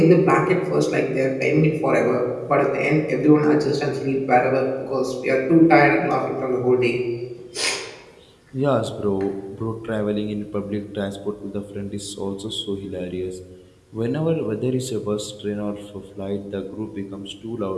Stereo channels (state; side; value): identical; both; correlation 1.00